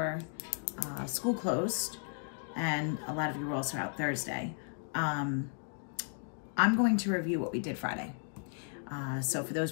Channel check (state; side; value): silent; right; 55 dB below the other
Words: school closed, and a lot of you were also out Thursday, I'm going to review what we did Friday. So for